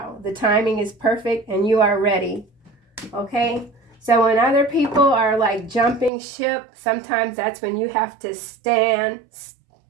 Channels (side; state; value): left; drops out; at 6.1 s